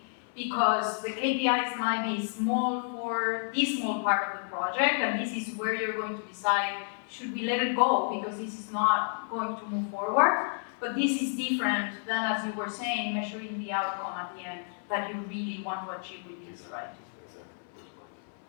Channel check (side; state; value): right; silent; 57 dB below the other